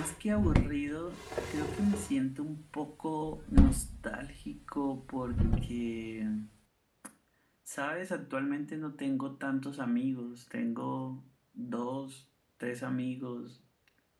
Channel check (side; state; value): both; identical; correlation 1.00